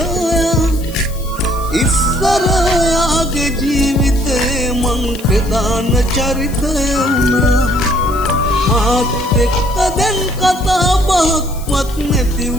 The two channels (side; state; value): left; noise; hiss, 18 dB below the sound